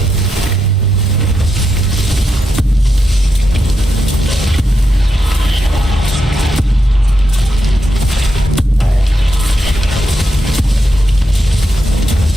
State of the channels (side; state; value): both; normal; correlation 0.84